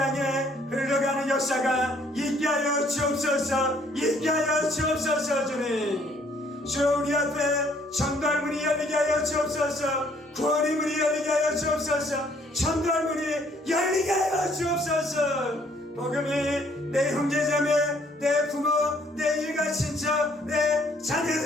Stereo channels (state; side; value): normal; both; correlation 0.63